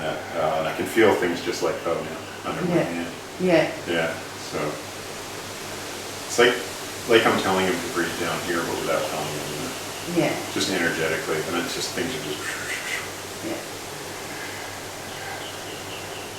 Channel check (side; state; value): both; identical; correlation 1.00